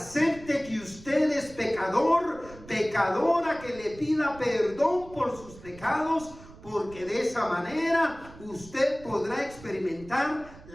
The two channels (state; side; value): noise; right; rumble, 19 dB below the sound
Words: que usted es pecador, pecadora, que le pida perdón por sus pecados, porque de esa manera usted podrá experimentar